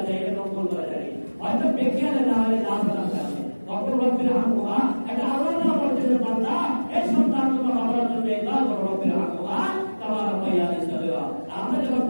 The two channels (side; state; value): both; inverted; correlation -1.00